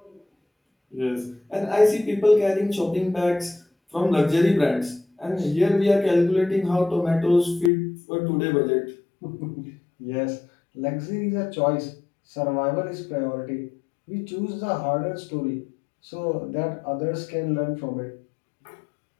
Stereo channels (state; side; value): drops out; right; at 7.7 s